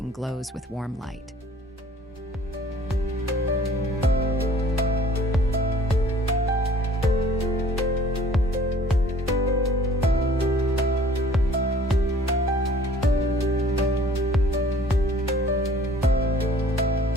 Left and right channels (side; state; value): both; normal; correlation 0.52